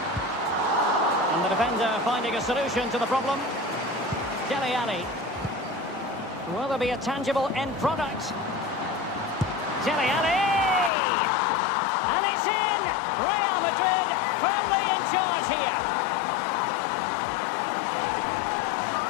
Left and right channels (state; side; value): drops out; right; at 10.9 s